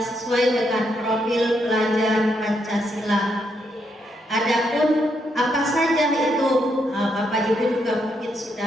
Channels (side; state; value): both; normal; correlation 0.78